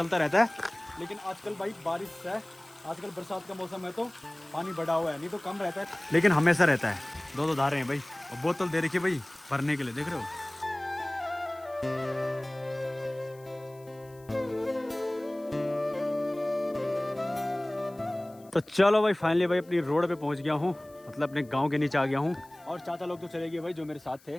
रहता है, लेकिन आजकल भाई बारिश है, आजकल बरसात का मौसम है तो पानी बढ़ा हुआ है, नहीं तो कम रहता है, लेकिन हमेशा रहता है। 2 धारे हैं भाई, और बोतल दे रखी है भाई भरने के लिए, देख रहे हो? तो चलो भाई, फाइनली भाई अपनी रोड पे पहुंच गया हूँ, मतलब अपने गांव के नीचे आ गया हूँ। और चाचा लोग तो चले गए भाई जो मेरे साथ थे।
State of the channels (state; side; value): noise; left; hiss, 27 dB below the sound